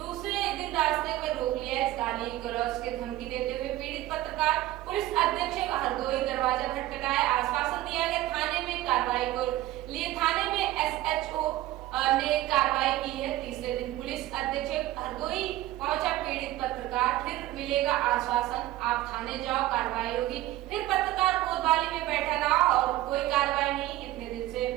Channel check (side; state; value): left; quieter; 15.8 dB